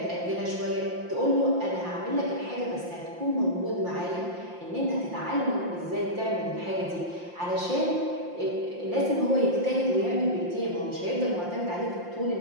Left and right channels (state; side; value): late; left; 5.7 ms